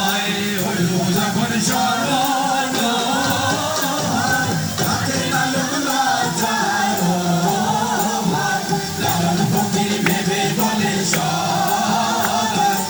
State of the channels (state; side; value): identical; both; correlation 1.00